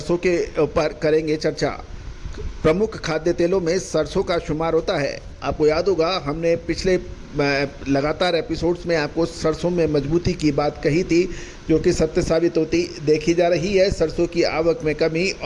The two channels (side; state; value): both; identical; correlation 1.00